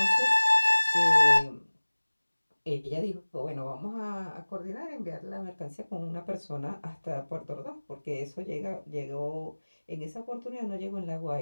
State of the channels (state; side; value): inverted; both; correlation -1.00